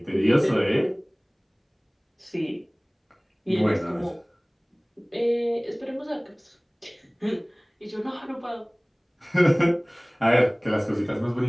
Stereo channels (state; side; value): identical; both; correlation 1.00